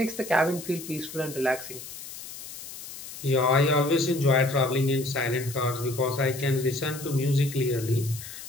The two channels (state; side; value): noise; left; hiss, 12 dB below the sound